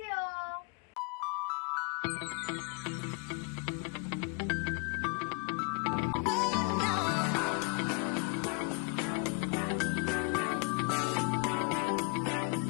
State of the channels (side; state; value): right; quieter; 29.5 dB